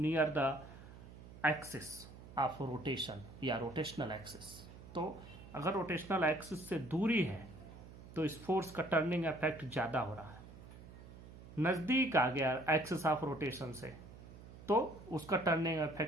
the axis of rotation या रोटेशनल एक्सिस। तो अगर रोटेशनल एक्सिस से दूरी है तो इस फोर्स का टर्निंग इफेक्ट ज्यादा हो रहा है, नजदीक आ गया एक्सिस ऑफ रोटेशन से तो उसका टर्निंग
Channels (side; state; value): right; noise; hum, 16 dB below the sound